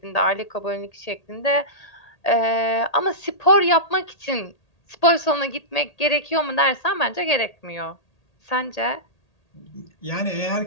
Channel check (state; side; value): late; right; 1.8 ms